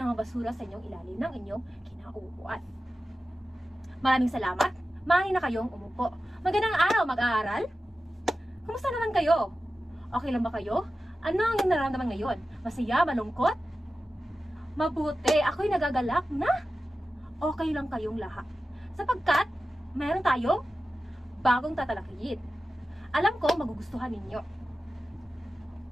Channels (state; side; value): normal; both; correlation 0.94